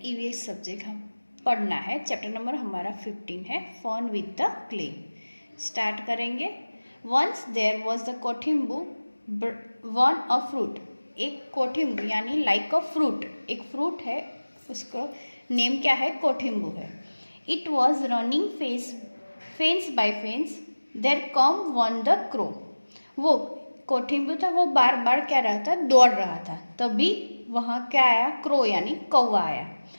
ईवीएस सब्जेक्ट हम पढ़ना है। चैप्टर नंबर हमारा 15 है, fun with the clay. Start करेंगे। Once there was the Kothimbu one a fruit. एक कोठिम्बू यानी लाइक अ फ्रूट, एक फ्रूट है, उसको नेम क्या है? कोठिम्बू है। It was running fence by fence, there come one the crow. वो कोठिम्बू था, वो बार बार क्या रहा था? दौड़ रहा था। तभी वहाँ क्या आया? क्रो यानी कौवा आया।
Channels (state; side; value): inverted; both; correlation -1.00